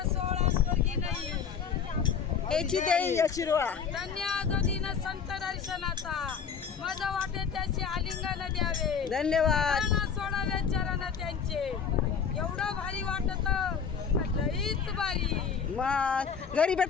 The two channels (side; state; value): right; quieter; 6.7 dB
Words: याची देई शिरवा संत दर्शनाचा माझा वाटे त्याचे आलिंगन द्यावे, धन्यवाद. सोडावे चरण त्यांचे. एवढं भारी वाटत, लईच भारी. मग घरी